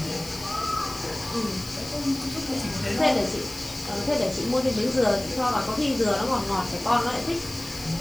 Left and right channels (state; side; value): noise; left; hiss, 15 dB below the sound